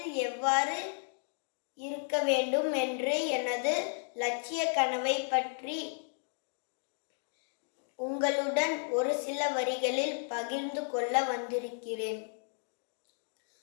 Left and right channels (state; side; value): silent; right; 55 dB below the other